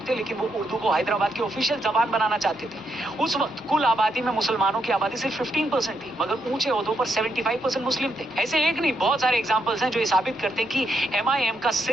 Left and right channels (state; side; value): normal; both; correlation 0.79